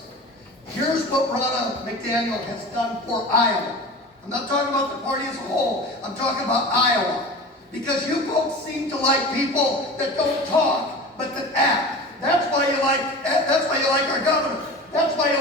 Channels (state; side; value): normal; both; correlation 0.35